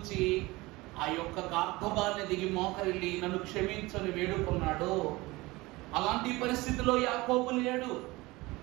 ఆ యొక్క గార్ధబాన్ని దిగి మోకరిల్లి నన్ను క్షమించని వేడుకున్నాడు. అలాంటి పరిస్థితిలో యాకోబు లేడు.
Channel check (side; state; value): left; quieter; 21.5 dB